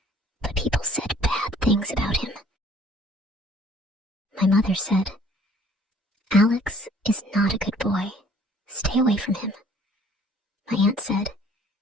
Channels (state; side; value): normal; both; correlation 0.56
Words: but people said bad things about him. My mother said, "Alex is not a good boy. Stay away from him." My aunt said,